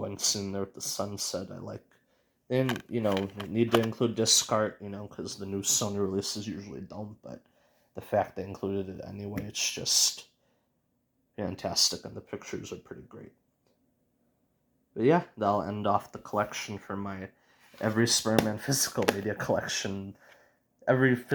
sitting there with the sunset. I like. And, need to include disc art, because the new Sony releases usually don't, but the fact they included it anyway, it's just fantastic, and the pictures are pretty great. But yeah, that'll end off the collection for my every Spider-Man physical media collection, every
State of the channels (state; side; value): identical; both; correlation 1.00